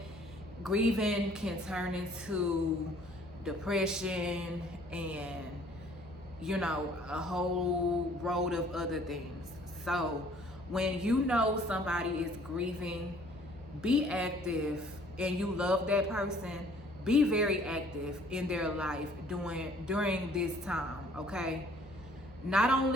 grieving can turn into depression and, you know, a whole road of other things. So when you know somebody is grieving, be active, and you love that person, be very active in their life during this time, okay? Not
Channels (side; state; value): right; noise; hum, 27 dB below the sound